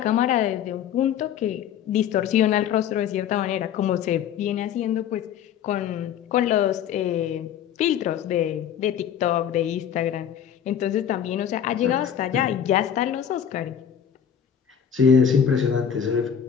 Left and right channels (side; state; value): right; quieter; 8.8 dB